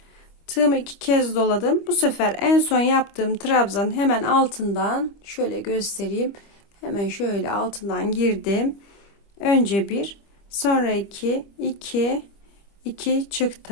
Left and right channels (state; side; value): late; right; 25 ms